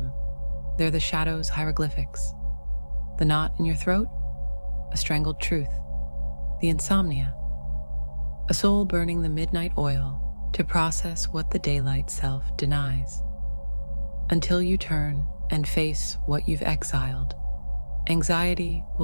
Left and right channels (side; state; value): both; inverted; correlation -1.00